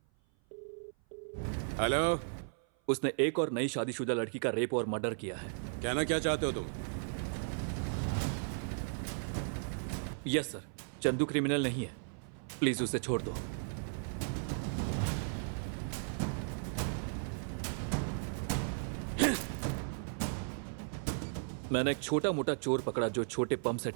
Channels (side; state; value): left; silent; 54 dB below the other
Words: हेलो. उसने एक और नई शादीशुदा लड़की का रेप और मर्डर किया है. कहना क्या चाहते हो तुम? Yes sir. चंदू क्रिमिनल नहीं है, प्लीज उसे छोड़ दो. मैंने एक छोटा मोटा चोर पकड़ा जो छोटे पंप सेट